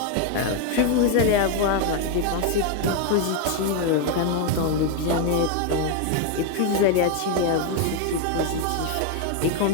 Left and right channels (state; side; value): different; both; correlation 0.01